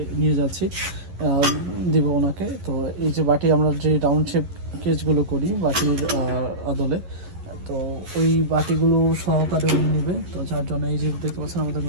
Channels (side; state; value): left; late; 11 ms